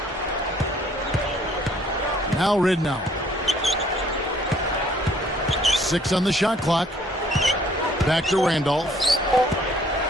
Now Ridnour. 6 on the shot clock. Back to Randolph.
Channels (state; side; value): normal; both; correlation 0.60